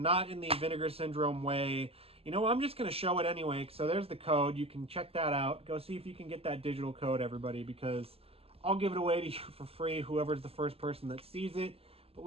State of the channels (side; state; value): left; late; 0.28 ms